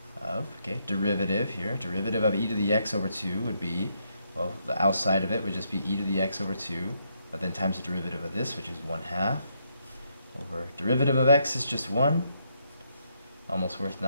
of, okay, derivative here. Derivative of e to the x over 2 would be, well, the outside of it would just be e to the x over 2, but then times the derivative of this, which is 1/2, over derivative of x is just 1. Almost worth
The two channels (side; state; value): both; inverted; correlation -0.77